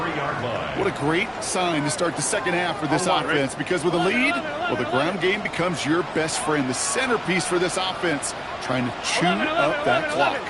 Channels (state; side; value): identical; both; correlation 1.00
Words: What a great sign to start the second half for this offense, because with a lead, well, the ground game becomes your best friend, the centerpiece for this offense, trying to chew up that clock.